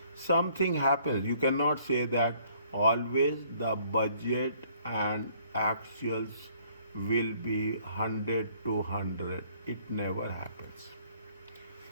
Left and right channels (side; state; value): both; inverted; correlation -0.62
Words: Something happens. You cannot say that always the budget and actuals will be 100 to 100. It never happens.